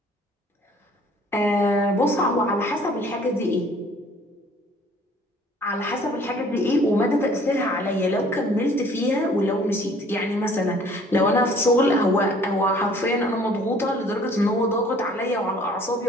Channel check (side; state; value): both; normal; correlation 0.55